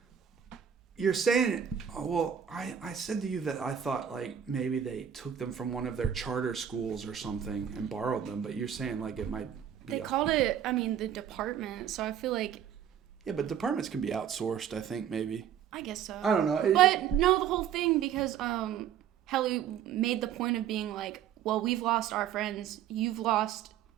You're saying, well, I said to you that I thought like maybe they took them from one of their charter schools or something and borrowed them, but you're saying like it might be. They called it, the department. So I feel like. Yeah, but departments can be outsourced. I think maybe. I guess so. I don't know. But no, the whole thing because Helly made the point of being like, well, we've lost our friends, you've lost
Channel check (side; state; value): left; quieter; 9.2 dB